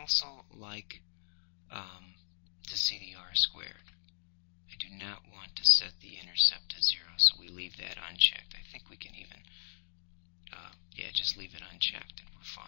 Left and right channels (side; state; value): right; silent; 53 dB below the other